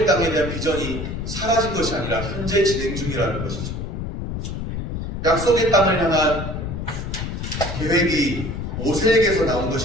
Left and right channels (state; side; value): noise; left; rumble, 5 dB below the sound